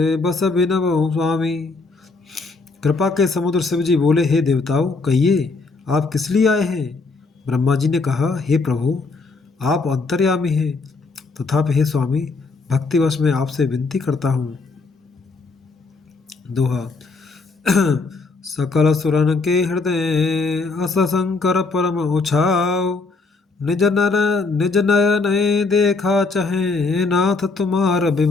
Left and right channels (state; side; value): quieter; right; 3.9 dB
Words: बस बिनवहु स्वामी। कृपा के समुद्र शिवजी बोले, हे देवताओं, कहिए आप किस लिए आए हैं। ब्रह्मा जी ने कहा, हे प्रभु, आप अंतर्यामी हैं, तथापि हे स्वामी, भक्तिवश में आपसे विनती करता हूँ। दोहा। सकल सुरन के हृदय अस शंकर परम उछाव। निज नयन देखा चहे नाथ तुम्हार